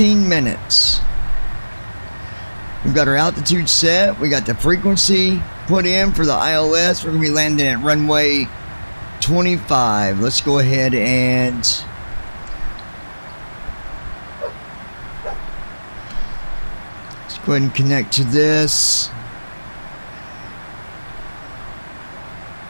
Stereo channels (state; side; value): inverted; both; correlation -1.00